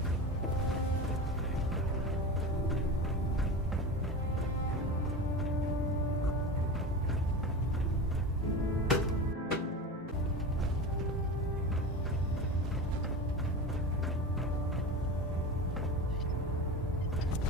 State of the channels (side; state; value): both; normal; correlation 0.28